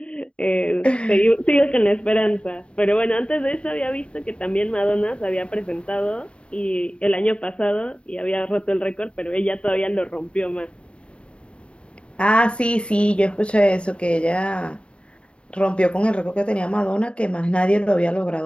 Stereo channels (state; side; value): late; right; 0.057 ms